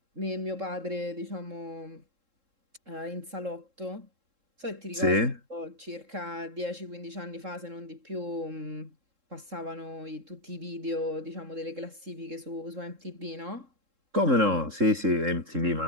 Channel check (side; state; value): left; late; 3.7 ms